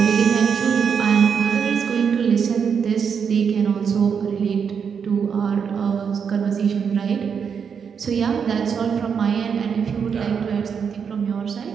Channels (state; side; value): quieter; left; 6.7 dB